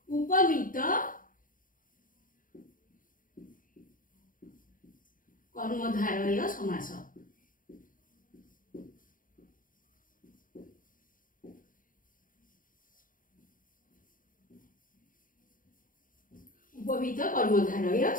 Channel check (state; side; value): late; right; 0.40 ms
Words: उपमित कर्मधारय समास। उपमित कर्मधारय